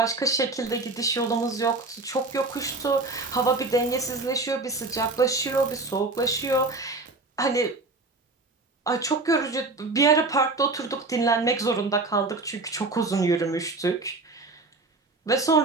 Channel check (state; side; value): quieter; left; 3.3 dB